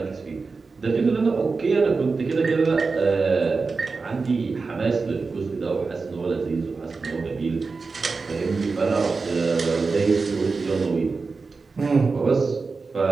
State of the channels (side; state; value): left; quieter; 4.3 dB